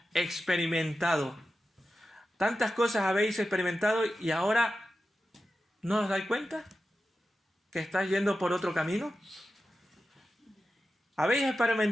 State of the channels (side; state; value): both; normal; correlation 0.92